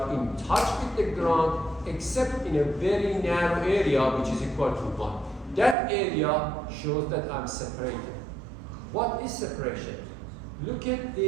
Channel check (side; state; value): left; drops out; at 5.8 s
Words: in touch with the ground, except in a very narrow area, which is equal to 1. That area shows that I'm separated. What is separation? Look at